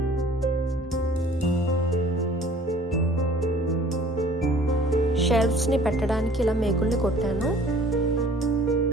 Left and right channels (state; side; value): normal; both; correlation 0.51